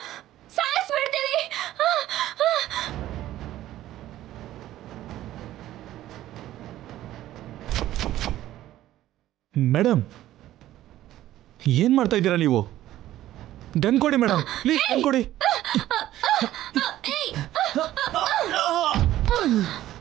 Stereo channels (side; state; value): left; quieter; 13.9 dB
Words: ಸಾಯಿಸ್ಬಿಡ್ತೀನಿ. ಮೇಡಮ್ ಏನ್ ಮಾಡ್ತಾ ಇದ್ದೀರಾ ನೀವು? ಗನ್ ಕೊಡಿ ಮೇಡಮ್, ಪ್ಲೀಸ್ ಗನ್ ಕೊಡಿ.